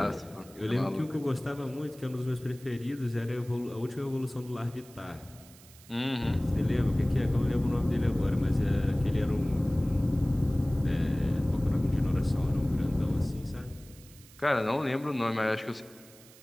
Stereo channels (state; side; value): noise; right; hiss, 23 dB below the sound